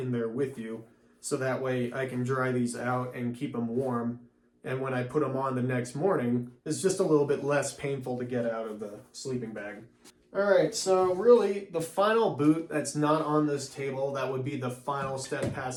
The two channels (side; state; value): both; identical; correlation 1.00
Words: there with you. So that way I can dry these out and keep them warm. And when I put them on the next morning, it's just a little bit less painful to get out of the sleeping bag. All right, so really the final boot that's not on this table, that would be the final step